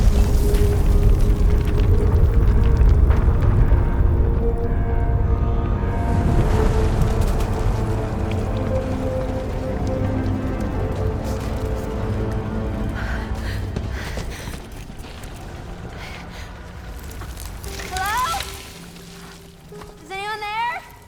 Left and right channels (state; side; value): identical; both; correlation 1.00